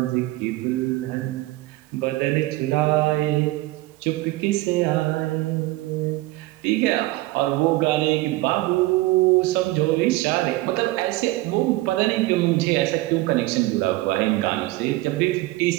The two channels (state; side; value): quieter; left; 19.0 dB